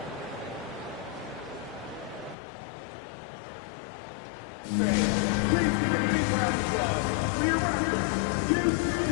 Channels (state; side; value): drops out; right; at 2.4 s